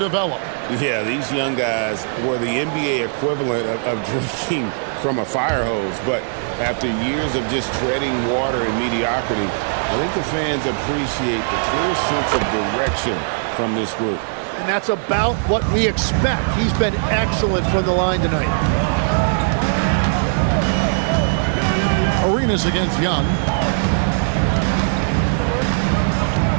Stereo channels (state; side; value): silent; left; digital silence